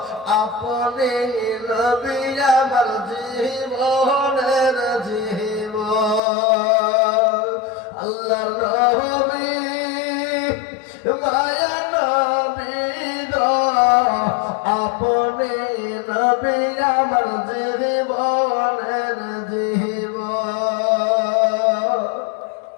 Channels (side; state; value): right; drops out; at 6.2 s